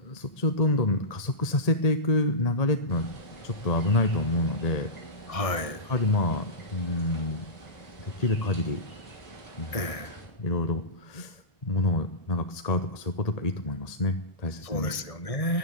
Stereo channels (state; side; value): late; right; 1.6 ms